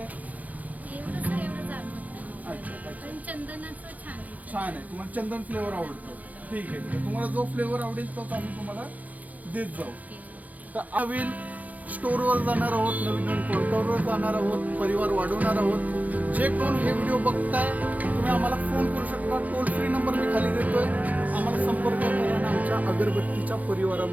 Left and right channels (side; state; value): left; late; 0.077 ms